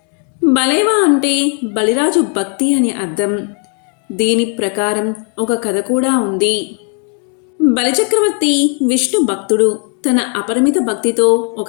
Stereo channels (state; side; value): quieter; right; 39.0 dB